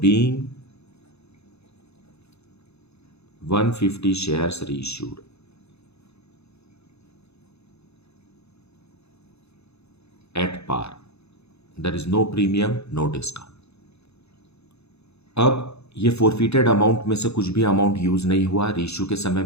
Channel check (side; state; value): right; late; 0.79 ms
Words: being 150 shares reissued at par, there is no premium, no discount. अब ये फोरफिटेड अमाउंट में से कुछ भी अमाउंट यूज नहीं हुआ रीइश्यू के समय